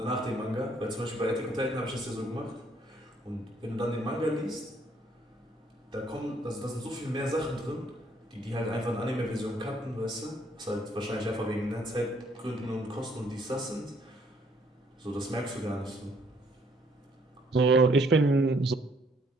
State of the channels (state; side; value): normal; both; correlation 0.66